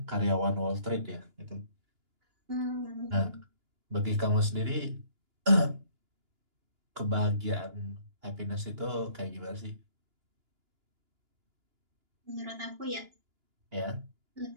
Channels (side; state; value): left; late; 2.9 ms